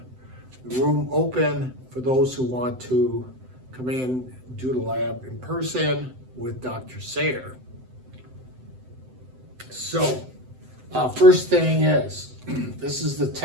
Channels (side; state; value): left; late; 7.8 ms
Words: the room open for those who want to come in, do the lab in person with Dr. Sayer. So, first thing is, this is the